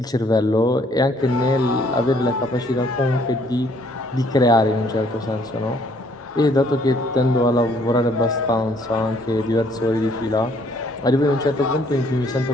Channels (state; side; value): normal; both; correlation 0.64